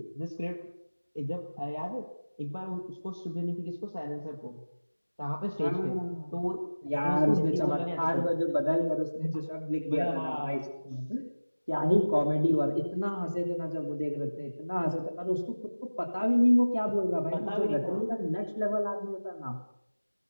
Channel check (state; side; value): inverted; both; correlation -1.00